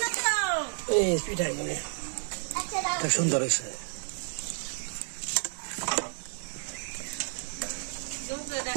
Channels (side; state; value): left; silent; 57 dB below the other